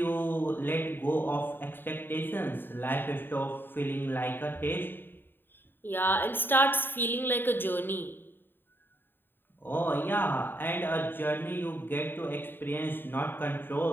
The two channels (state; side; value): late; right; 0.096 ms